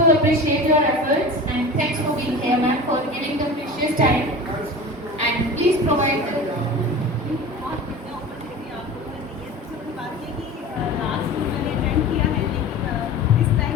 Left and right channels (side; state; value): both; normal; correlation 0.34